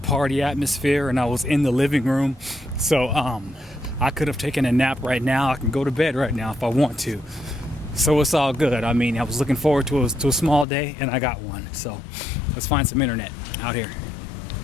atmosphere and I was in the living room. So I could have taken a nap right now. I can go to bed right now if I want to. So it's all good. I mean, I was looking forward to a small day and I got one. So let's find some internet out here.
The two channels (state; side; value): drops out; right; at 10.7 s